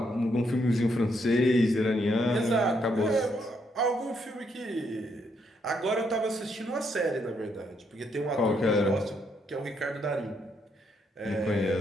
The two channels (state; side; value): normal; both; correlation 0.75